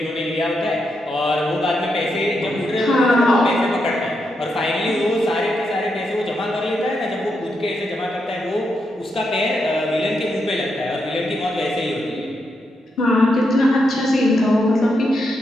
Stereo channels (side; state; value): both; normal; correlation 0.83